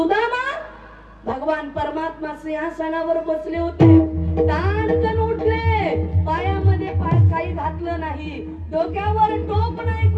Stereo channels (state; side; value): identical; both; correlation 1.00